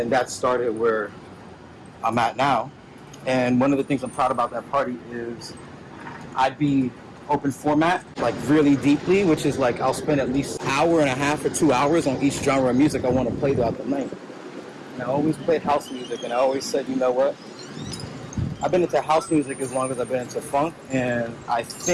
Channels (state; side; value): identical; both; correlation 1.00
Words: that started where I'm at now. And one of the things I'm proud about that party is I'd be open format, like really deeply, which is like I'll spend at least an hour and a half or 2 hours on each genre of music I want to play throughout the night. And I always played house music, and I always said, you know what? I've been into house music as long as I've been into funk, and I